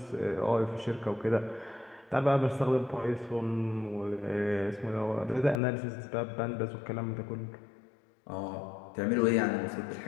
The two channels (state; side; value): drops out; right; at 5.6 s